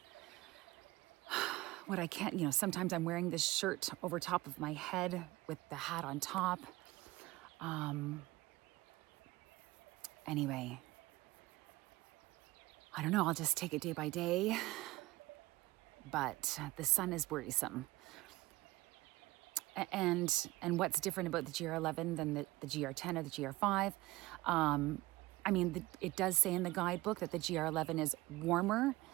what I can. Sometimes I'm wearing this shirt over top of my head with the hat on top. Anyway, I don't know, I'll just take it day by day. But the sun is worrisome. And what's different about the GR11 than the GR10 or the GR5? I mean, it does say in the guidebook that the GR11 is warmer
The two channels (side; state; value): left; quieter; 19.3 dB